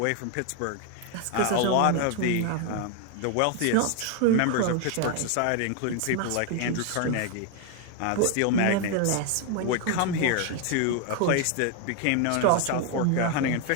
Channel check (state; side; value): different; both; correlation 0.01